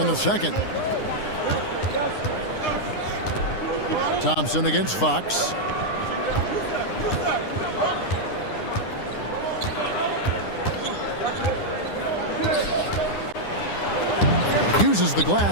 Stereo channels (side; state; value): right; late; 9.8 ms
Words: the second. Thompson against Fox. Uses the